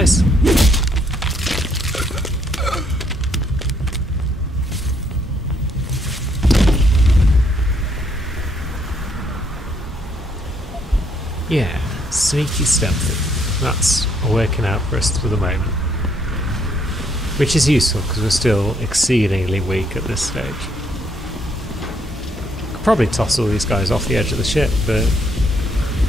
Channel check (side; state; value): both; normal; correlation 0.71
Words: Yeah, sneaky stealthy. That's working out for us for the moment. Which is useful because we're still exceedingly weak at this stage. Could probably toss all these guys off the edge of the ship, but